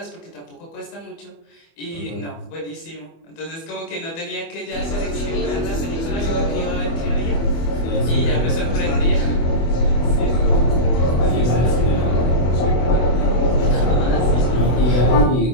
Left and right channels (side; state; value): right; late; 24 ms